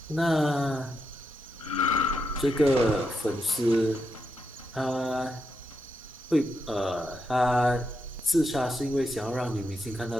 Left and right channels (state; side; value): normal; both; correlation 0.83